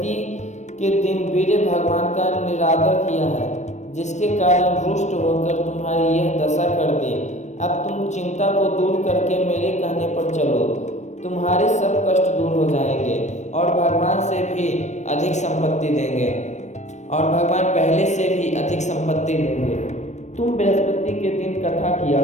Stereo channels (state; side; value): late; right; 0.34 ms